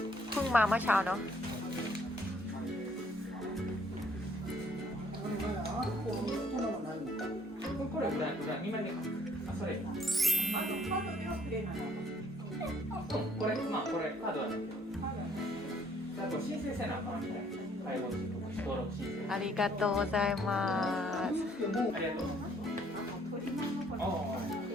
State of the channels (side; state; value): both; normal; correlation 0.63